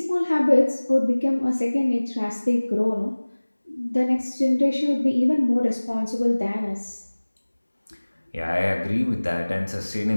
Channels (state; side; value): inverted; both; correlation -1.00